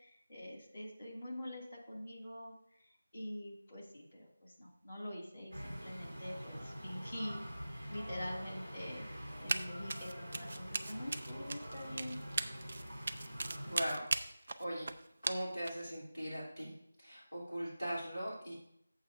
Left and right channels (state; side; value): inverted; both; correlation -0.95